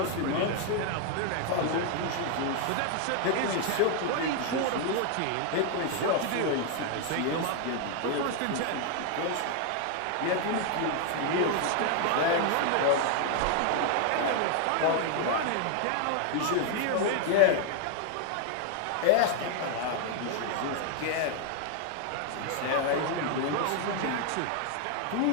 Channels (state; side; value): different; both; correlation 0.00